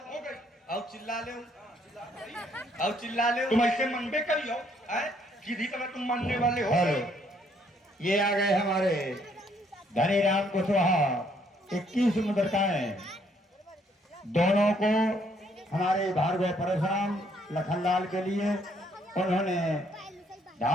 हो गई। अब चिल्ला ले, अब चिल्ला ले। तुम ऐसे मनबे करियो, सीधी तरह तुम मानने वाले हो। हेलो, ये आ गए हमारे धनी राम कुशवाहा। 21 मुद्रिकाएं दोनों को हमारे भार्गव परशुराम लखनलाल के लिए उन्होंने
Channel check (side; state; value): both; normal; correlation 0.68